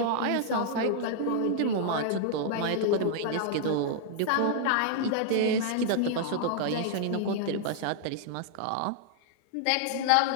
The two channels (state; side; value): different; both; correlation -0.01